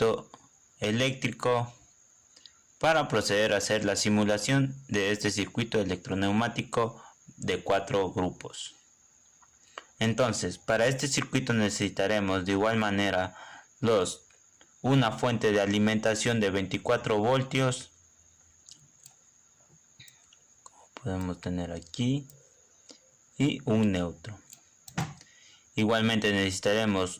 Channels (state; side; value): identical; both; correlation 1.00